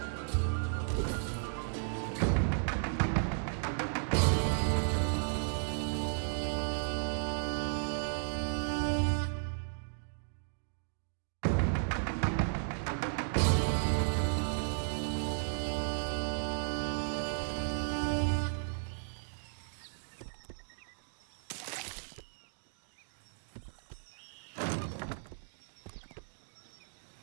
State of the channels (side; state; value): left; silent; digital silence